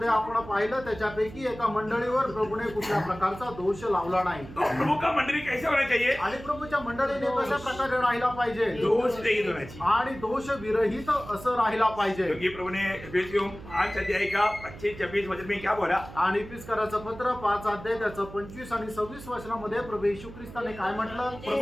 आपण पाहिलं त्याच्यापैकी एका मंडळीवर प्रभूने कुठल्या प्रकारचा दोष लावला नाही। तो प्रभु का मंडली कैसे होना चाहिए? आणि प्रभूच्या मंडळीने कशा प्रकारे राहिला पाहिजे? दोष रहित होना चाहिए। आणि दोष विरहित असं राहिला पाहिजे। क्योंकि प्रभु ने एफेसियों 5 अध्याय का 25-26 वचन में क्या बोला? आणि इफिसकाराचं पत्र 5 अध्याय त्याचं 25 आणि 26 वचनामध्ये प्रभु येशू ख्रिस्ताने काय म्हटलं?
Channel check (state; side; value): noise; right; hum, 15 dB below the sound